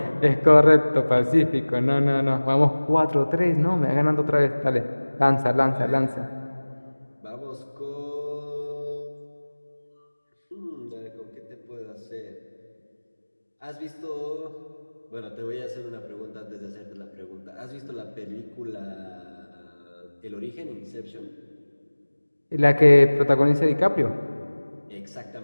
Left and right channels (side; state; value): both; inverted; correlation -1.00